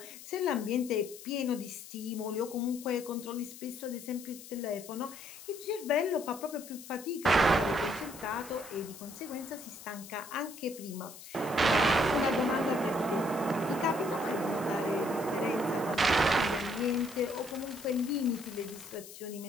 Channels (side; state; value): left; noise; hiss, 15 dB below the sound